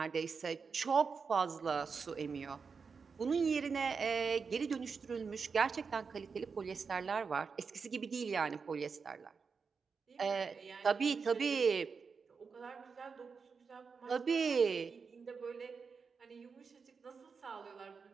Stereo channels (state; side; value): quieter; left; 5.4 dB